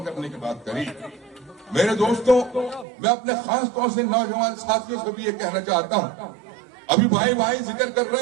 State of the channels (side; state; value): left; drops out; at 2.9 s